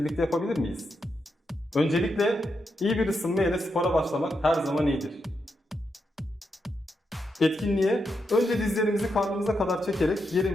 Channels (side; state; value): both; normal; correlation 0.84